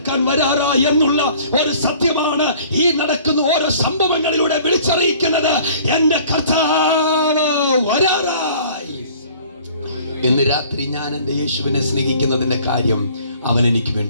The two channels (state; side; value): inverted; both; correlation -0.52